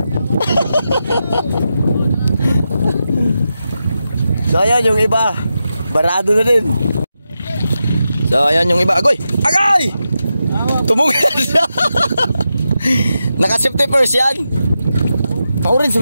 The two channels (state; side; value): inverted; both; correlation -0.89